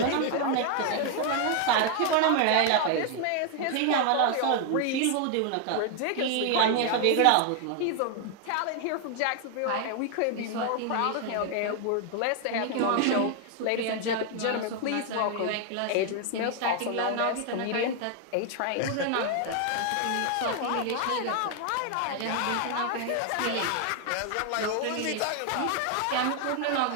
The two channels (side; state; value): both; different; correlation 0.00